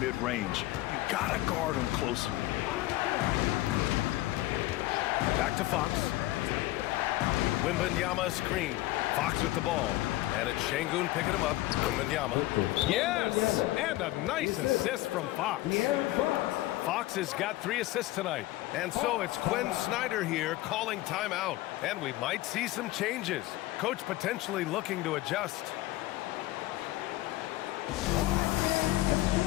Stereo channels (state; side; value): quieter; right; 17.4 dB